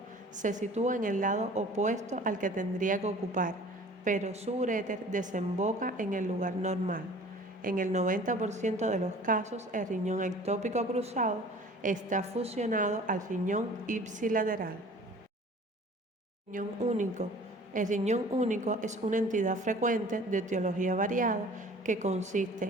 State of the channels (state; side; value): normal; both; correlation 0.47